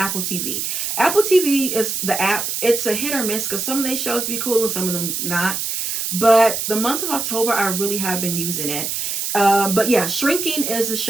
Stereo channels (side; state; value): right; noise; hiss, 2 dB below the sound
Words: TV. Apple TV is the app. It's a hit or miss because some of these shows be cool and some of them not. But the month of October, I really have been using it. But yeah, Shrinking is a